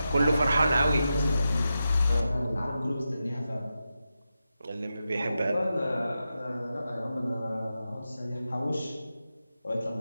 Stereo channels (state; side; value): inverted; both; correlation -0.89